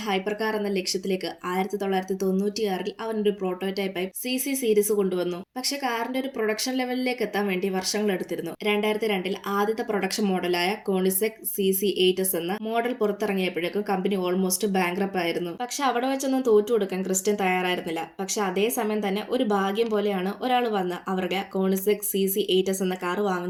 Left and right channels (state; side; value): identical; both; correlation 1.00